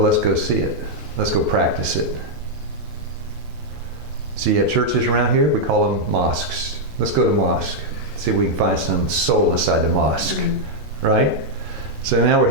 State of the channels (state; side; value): normal; both; correlation -0.03